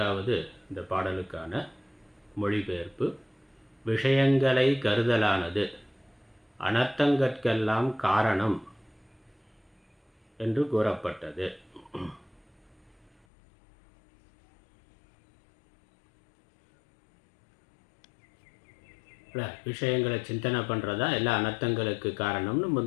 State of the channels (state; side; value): drops out; right; at 13.2 s